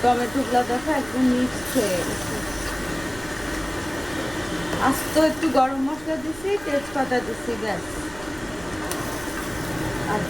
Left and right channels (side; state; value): right; noise; rumble, 18 dB below the sound